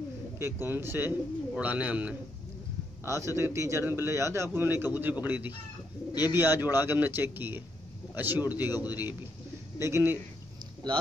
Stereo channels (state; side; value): normal; both; correlation 0.78